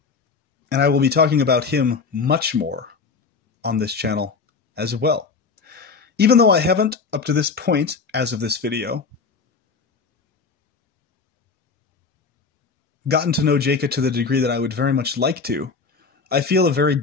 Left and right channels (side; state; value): right; quieter; 4.9 dB